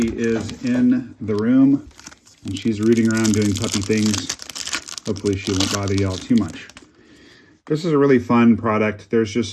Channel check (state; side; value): identical; both; correlation 1.00